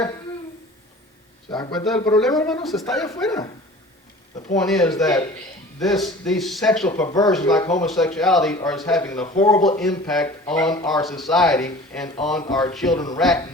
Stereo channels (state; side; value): normal; both; correlation 0.43